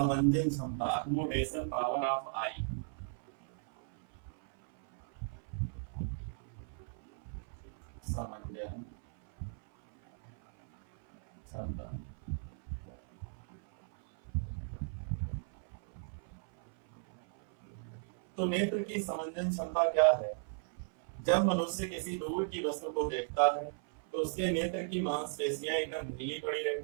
क्षमता, अकोमोडेशन पावर ऑफ आई, समंजन क्षमता। तो नेत्र की समंजन क्षमता क्या है? जब मनुष्य किसी दूर की वस्तु को देखता है तो उसके नेत्र की मांसपेशियां एकदम ढीली पड़ी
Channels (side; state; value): left; silent; 54 dB below the other